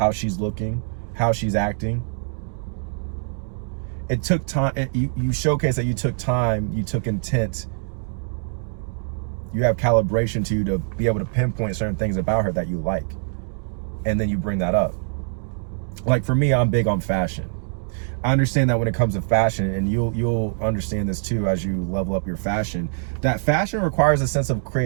she's looking, how she's acting. It took time. You showcase that you took time, you took intent. You have calibration to you to be able to pinpoint certain things about her that you like. And then you bring that up. Like for me, I'm big on fashion. I understand that when it comes to fashion, and you'll understand this too as you level up your fashion, that fashion requires a sense of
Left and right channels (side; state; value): left; silent; digital silence